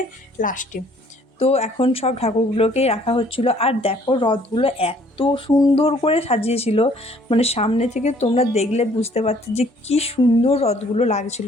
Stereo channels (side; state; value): both; normal; correlation 0.60